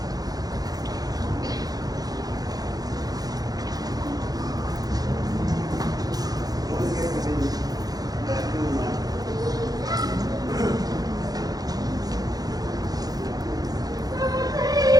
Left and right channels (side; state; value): left; late; 0.18 ms